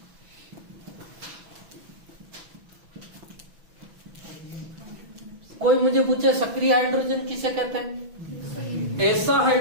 कोई मुझे पूछे सक्रिय हाइड्रोजन किसे कहते हैं? ऐसा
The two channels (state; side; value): late; left; 6.1 ms